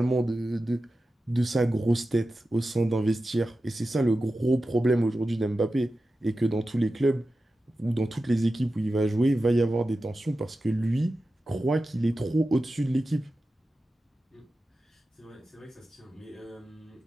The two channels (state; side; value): normal; both; correlation 0.93